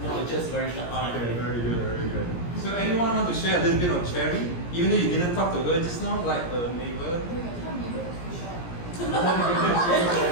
No, just very short time. Okay, very good, very good. So anyone want to share a little bit on Cherry? Even though you didn't talk to her just now, like a neighbor? I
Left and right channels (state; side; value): late; right; 17 ms